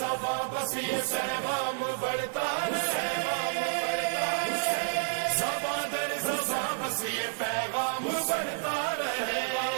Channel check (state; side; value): silent; left; digital silence